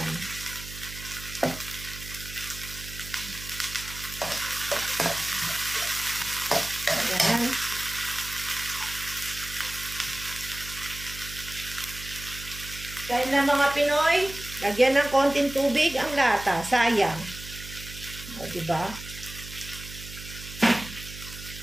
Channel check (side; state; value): right; noise; hum, 12 dB below the sound